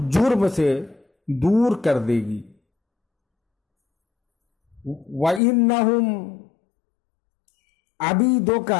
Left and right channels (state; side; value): drops out; right; at 5.4 s